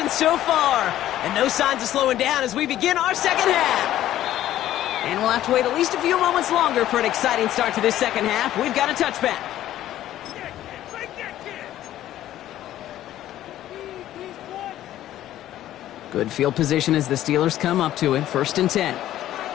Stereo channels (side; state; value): right; quieter; 13.1 dB